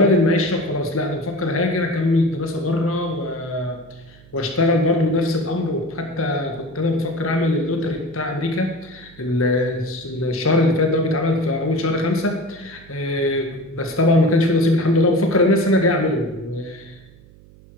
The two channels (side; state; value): right; noise; hum, 24 dB below the sound